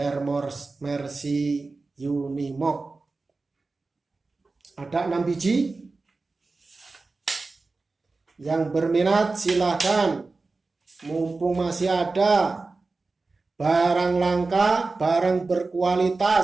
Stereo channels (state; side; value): quieter; left; 3.7 dB